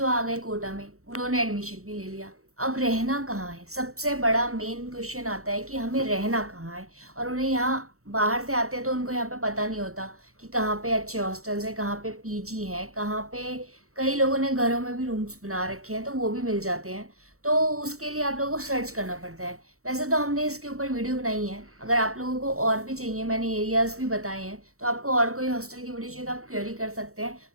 आ गए कोटा में, उन्होंने एडमिशन भी ले लिया, अब रहना कहाँ है। सबसे बड़ा मेन क्वेश्चन आता है कि हमें रहना कहाँ है। और उन्हें यहाँ बाहर से आते हैं तो उनको यहाँ पे पता नहीं होता कि कहाँ पे अच्छे हॉस्टल्स हैं, कहाँ पे पीजी हैं, कहाँ पे कई लोगों ने घरों में भी रूम्स बना रखे हैं तो वो भी मिल जाते हैं। तो उसके लिए आप लोगों को सर्च करना पड़ता है। वैसे तो हमने इसके ऊपर वीडियो बनाई है, अगर आप लोगों को और भी चाहिए, मैंने एरियाज़ भी बताए हैं, तो आपको और कोई हॉस्टल की वीडियो चाहिए तो आप क्वेरी कर सकते हैं।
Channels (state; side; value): late; left; 0.64 ms